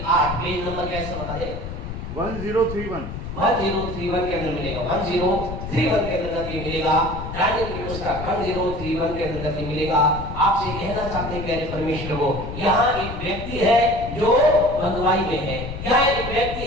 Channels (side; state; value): left; noise; rumble, 8 dB below the sound